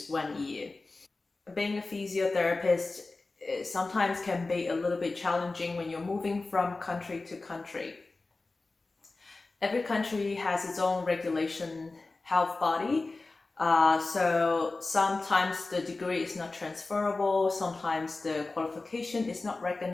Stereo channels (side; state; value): right; quieter; 3.5 dB